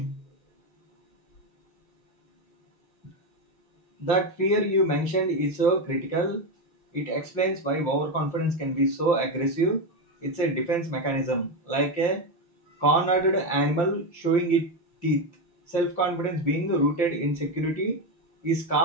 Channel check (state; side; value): late; right; 5.8 ms